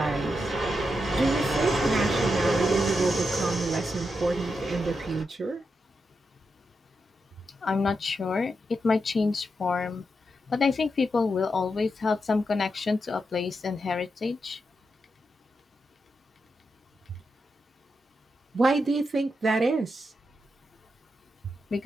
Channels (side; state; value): both; normal; correlation 0.86